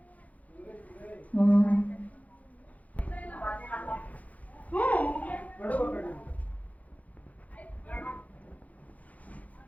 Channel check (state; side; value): late; right; 0.072 ms